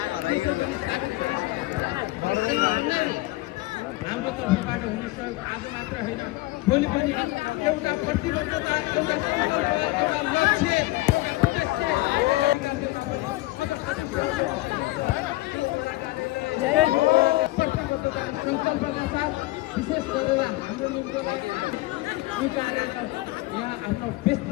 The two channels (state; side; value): quieter; right; 19.8 dB